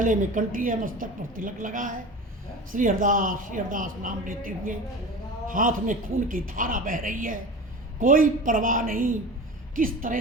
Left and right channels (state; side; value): normal; both; correlation 0.33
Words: में कंठी है, मस्तक पर तिलक लगा है, श्री हरदास नाम लेते हुए हाथ में खून की धारा बह रही है। कोई परवाह नहीं किस